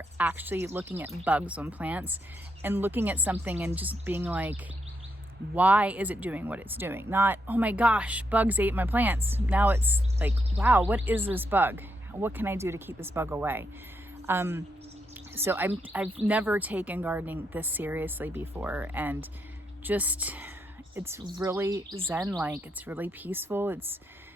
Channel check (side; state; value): both; normal; correlation 0.80